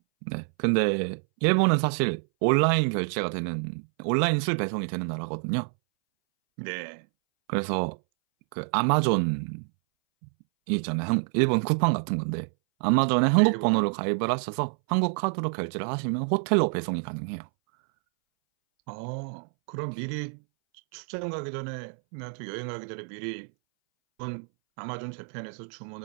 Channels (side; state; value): left; silent; 60 dB below the other